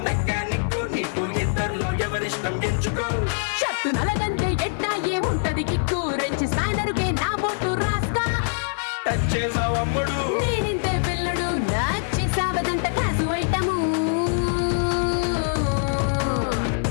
మెకానిక్, నీకు ఇద్దరులో ఎవరిష్టం ఎంచుకో. షర్టు నలగంటే ఎట్టా ఏముంటది కిక్కు, రెంచి స్పానరుకే నా బొట్టు రాస్తా. టచ్ చేసావు అమ్ముడు, నేనింతే పిల్లడు, నచ్చి సావదంట క్లాసు ఐటము.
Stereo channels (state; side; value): silent; right; 63 dB below the other